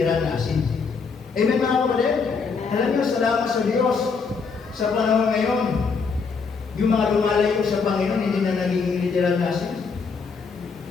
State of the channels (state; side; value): quieter; right; 5.1 dB